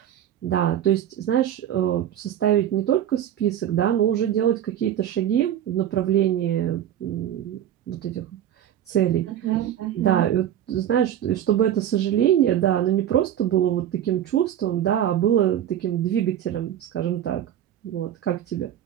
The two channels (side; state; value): left; quieter; 10.7 dB